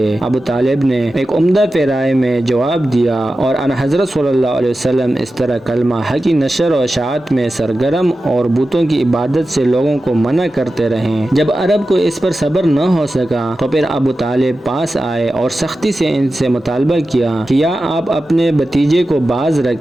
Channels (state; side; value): normal; both; correlation 0.93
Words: ابو طالب نے ایک عمدہ پیرائے میں جواب دیا اور ان حضرت صلی اللہ علیہ وسلم اس طرح کلمہ حق کی نشر و اشاعت میں سرگرم اور بتوں کی عبادت سے لوگوں کو منع کرتے رہیں۔ جب عرب کو اس پر صبر نہ ہو سکا تو پھر ابو طالب پاس آئے اور سختی سے ان سے مطالبہ کیا کہ یا آپ اپنے بھتیجے کو باز